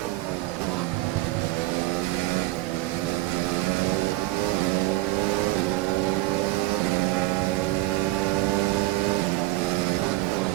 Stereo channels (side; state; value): left; quieter; 18.5 dB